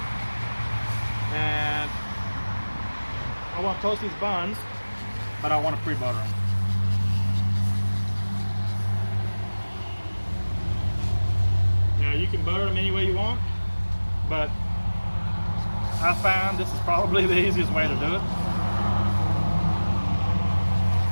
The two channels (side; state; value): both; inverted; correlation -1.00